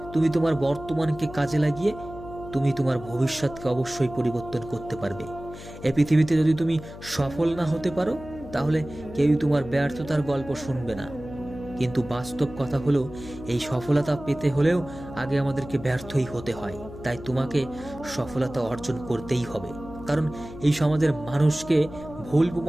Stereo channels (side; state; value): left; noise; hum, 14 dB below the sound